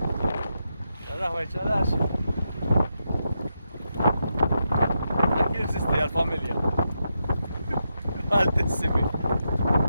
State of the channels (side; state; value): both; inverted; correlation -0.85